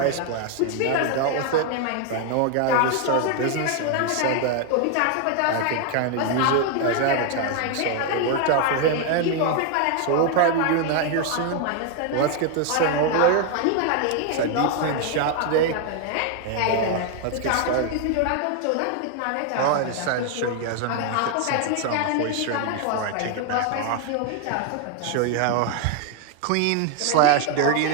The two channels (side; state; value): both; different; correlation 0.01